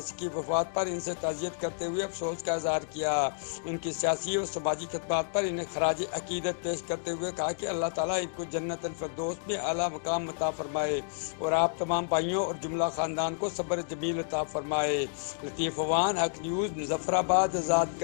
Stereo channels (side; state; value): right; silent; digital silence